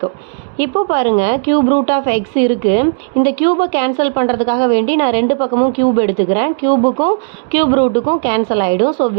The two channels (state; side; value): silent; left; digital silence